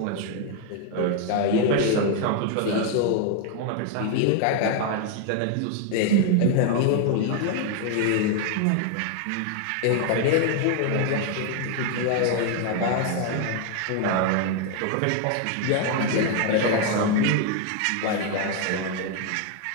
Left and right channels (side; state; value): both; different; correlation 0.01